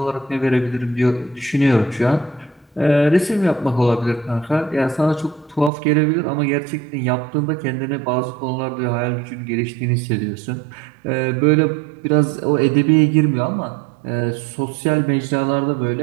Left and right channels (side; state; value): left; drops out; at 5.7 s